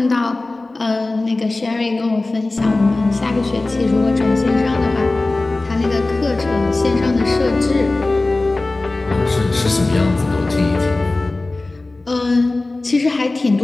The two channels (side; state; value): right; quieter; 3.1 dB